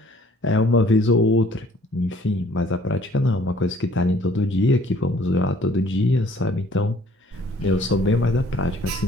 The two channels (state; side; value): normal; both; correlation 0.57